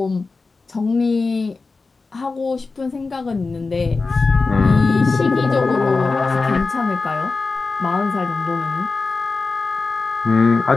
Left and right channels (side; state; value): right; quieter; 4.0 dB